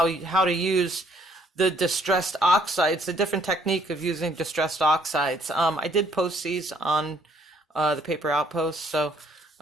to use the distressed oxides, the different technique of using distressed oxides. I did post these on the Paper Outpost, so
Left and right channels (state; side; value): normal; both; correlation 0.65